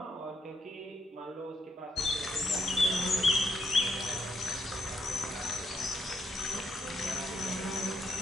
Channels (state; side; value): normal; both; correlation 0.77